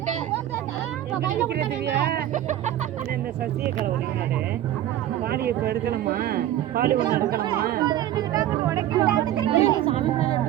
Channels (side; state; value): left; quieter; 12.5 dB